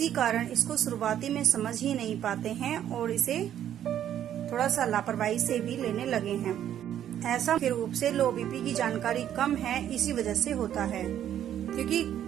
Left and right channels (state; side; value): quieter; left; 10.6 dB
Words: कारण इसको शुरुआती में समझ ही नहीं पाते हैं और इसे थोड़ा सा लापरवाही से भी लेने लगे हैं। ऐसा मुख्य रूप से लो बीपी की जानकारी कम है इसी वजह से होता है, क्योंकि